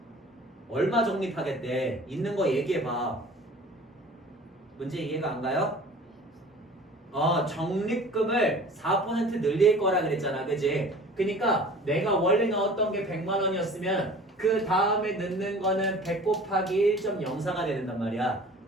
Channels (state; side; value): normal; both; correlation 0.45